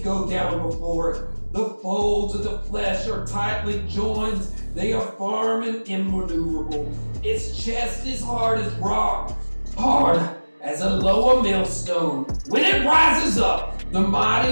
go down before it. The folds of the flesh are tightly joined. They are firm and immaneuverable. Its chest is hard as rock, hard as a lower millstone. When it rises up, the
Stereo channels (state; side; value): inverted; both; correlation -1.00